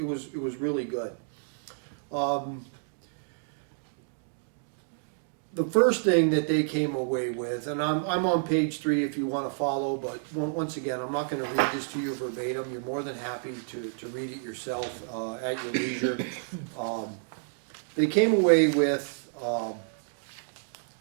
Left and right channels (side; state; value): left; silent; digital silence